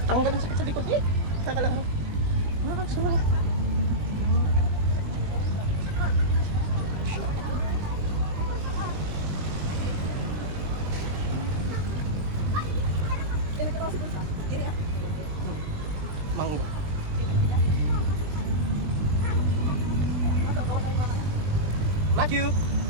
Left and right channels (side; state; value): left; late; 20 ms